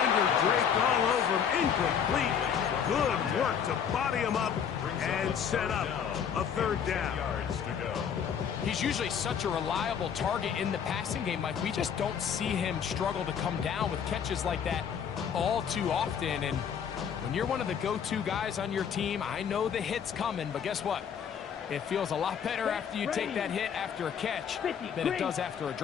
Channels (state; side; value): quieter; right; 7.8 dB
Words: draped all over him. Incomplete. Good work to body him up and set up a third down. Yards to go. He's usually such a reliable target in the passing game, Mike. We just don't see him struggle to come down with catches like that all too often. And when you're one of the go-to guys on your team, I know the hit's coming, but guess what? It feels a lot better after you take that hit after a catch than it does after a